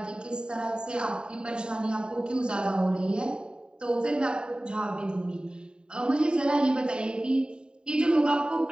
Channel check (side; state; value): left; late; 0.049 ms